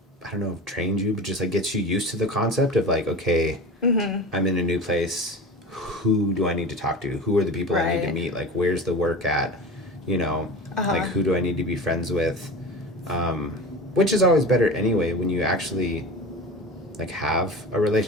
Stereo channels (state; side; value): normal; both; correlation 0.32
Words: I don't know if trained you, but just like gets you used to the concept of like, okay, I'm in a new place. Who do I need to talk to? Who are the people I need to meet? Like, where's the work at? Like who do I need to be friends with? Which is always better anyway when you actually like have a